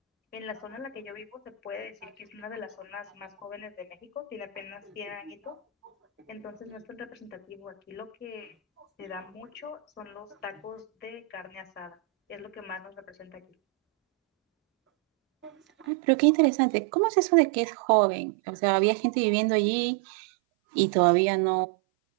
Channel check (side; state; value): left; drops out; at 15.9 s